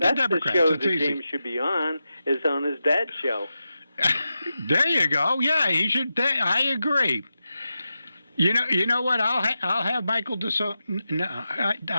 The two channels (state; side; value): inverted; both; correlation -0.90